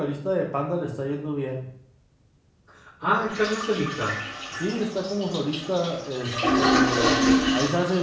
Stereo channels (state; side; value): identical; both; correlation 1.00